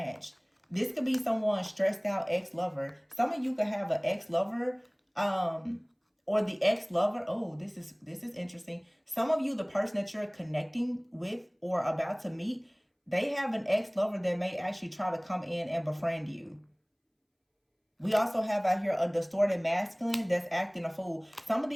This could be someone stressed out ex-lover. Some of you could have an ex-lover, or the ex-lover. Oh, this is interesting. Some of you, the person that you're connecting with or about to meet, they have an ex-lover that may actually try to come in and befriend you. We also have out here a distorted masculine that's acting a fool. Some of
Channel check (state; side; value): identical; both; correlation 1.00